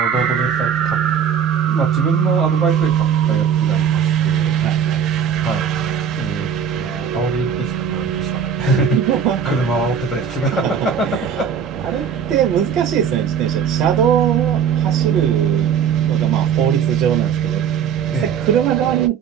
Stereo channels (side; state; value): left; quieter; 7.5 dB